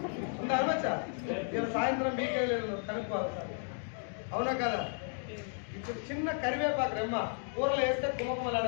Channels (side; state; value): right; silent; 55 dB below the other